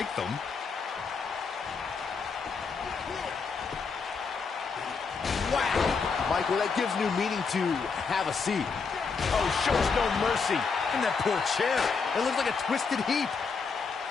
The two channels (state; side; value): quieter; right; 5.2 dB